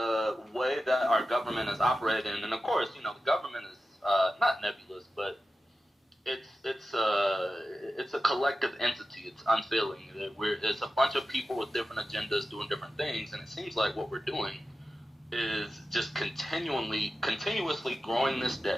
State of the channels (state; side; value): normal; both; correlation 0.93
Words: way that our government is operating, and of course, you know, the government is not nebulous, but it's a collective entity. It's unfailing. It's a bunch of people with different agendas doing different things, and it seems like what we're doing is just continuously growing this